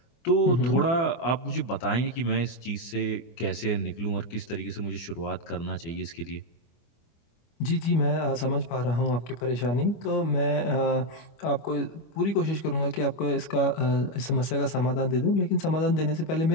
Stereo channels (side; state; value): right; late; 24 ms